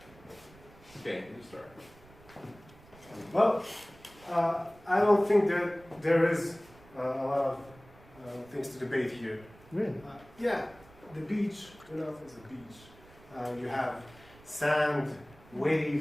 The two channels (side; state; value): right; noise; rumble, 24 dB below the sound